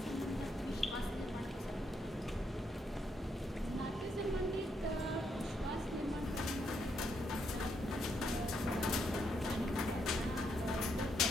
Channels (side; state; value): both; normal; correlation 0.77